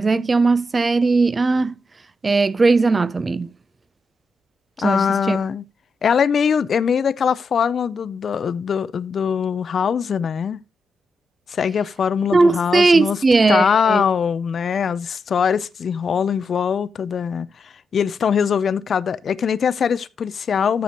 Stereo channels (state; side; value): normal; both; correlation 0.84